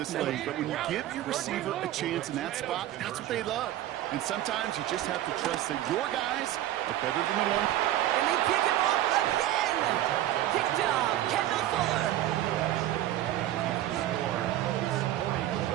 league, but when you give your receiver a chance in that spot, that's what they love. And sometimes you just have to trust that your guys are better than the one. And they pick him off again. Picked off Kendall Fuller.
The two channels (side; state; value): left; quieter; 13.4 dB